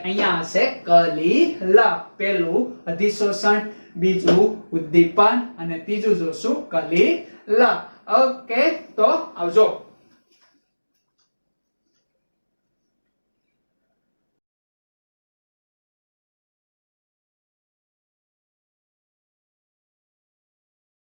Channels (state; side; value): inverted; both; correlation -1.00